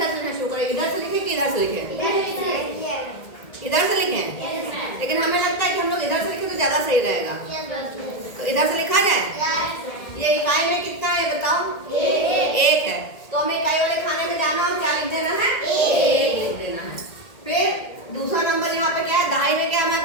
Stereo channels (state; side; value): late; right; 1.8 ms